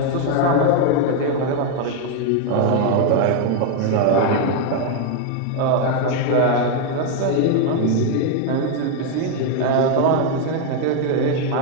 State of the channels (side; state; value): both; different; correlation 0.01